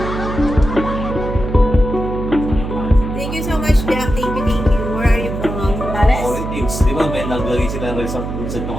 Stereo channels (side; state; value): right; noise; hum, 6 dB below the sound